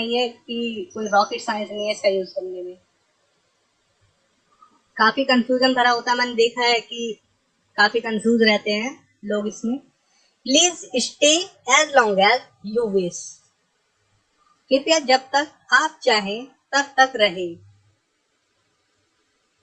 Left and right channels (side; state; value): both; identical; correlation 1.00